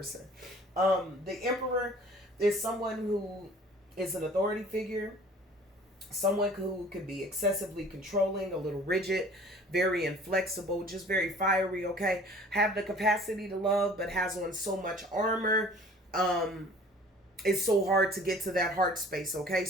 The Emperor is someone who is an authority figure, someone who can be excessively controlling, a little rigid, very inflexible, just very fiery, okay? Have the capacity to love, but has on so much armor. It's so hard to get to that heart space, okay?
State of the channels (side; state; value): both; normal; correlation 0.49